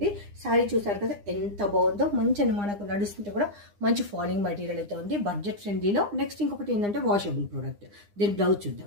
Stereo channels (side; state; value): left; late; 9.8 ms